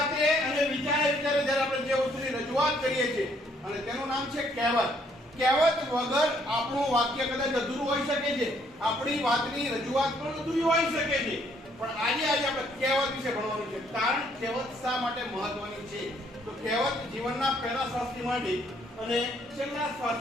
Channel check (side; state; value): both; normal; correlation 0.67